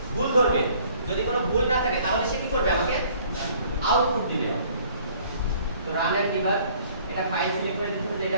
ভুল ধরবে যদি কোনো ভুল না থাকে তাহলে সে কি করবে আমাকে আউটপুট দিবে তো রান এন্ড ডিবাগ এটা ফাইল সিলেক্ট করে দিতে হবে এটা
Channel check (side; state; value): both; inverted; correlation -0.57